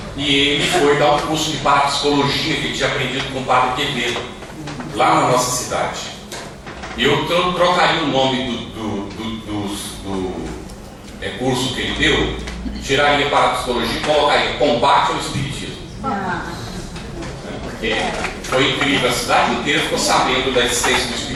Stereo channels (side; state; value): both; identical; correlation 1.00